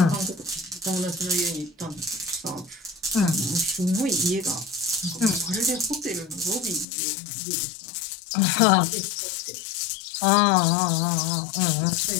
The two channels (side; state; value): right; drops out; at 6.9 s